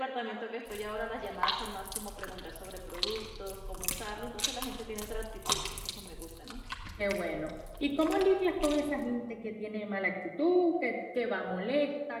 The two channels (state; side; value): identical; both; correlation 1.00